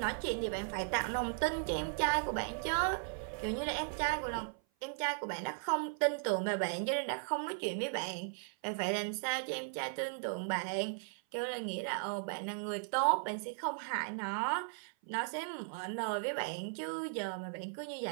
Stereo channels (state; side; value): silent; left; 53 dB below the other